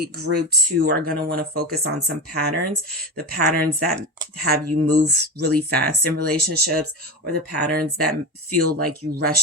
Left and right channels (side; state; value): both; normal; correlation 0.22